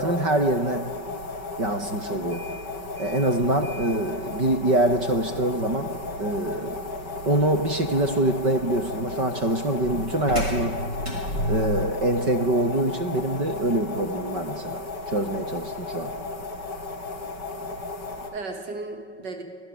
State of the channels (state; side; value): late; left; 5.2 ms